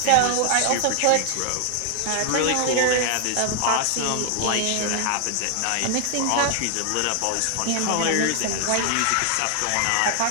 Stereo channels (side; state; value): both; different; correlation 0.00